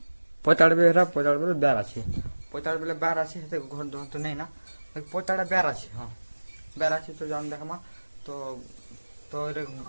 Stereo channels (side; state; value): both; inverted; correlation -1.00